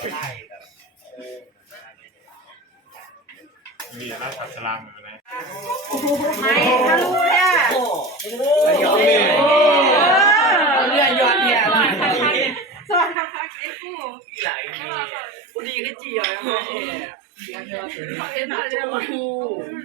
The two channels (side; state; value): left; drops out; at 13.2 s